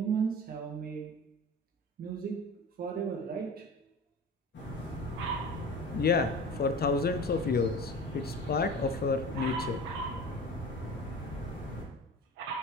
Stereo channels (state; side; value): normal; both; correlation 0.36